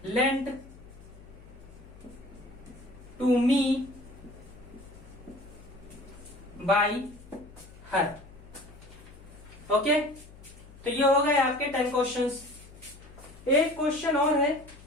lent to me by her. Okay, तो ये हो गए आपके 10 क्वेश्चंस। एक क्वेश्चन और है,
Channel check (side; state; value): left; noise; hum, 20 dB below the sound